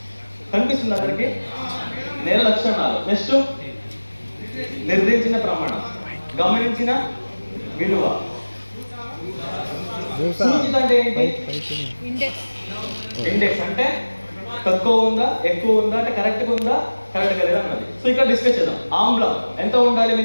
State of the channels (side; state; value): both; inverted; correlation -1.00